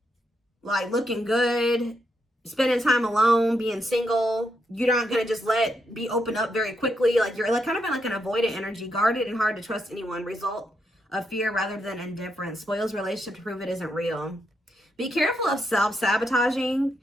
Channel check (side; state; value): both; normal; correlation 0.80